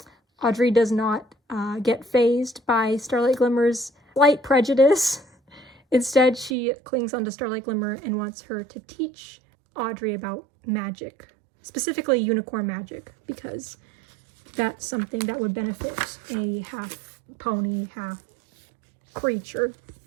Audrey does not get fazed by Starlight Glimmer's slight prejudice. Instead, she clings onto Starlight Glimmer and wants her to teach Audrey about magic, specifically unicorn magic, because that's something that would benefit a half pony, half creature.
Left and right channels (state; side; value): drops out; left; at 6.6 s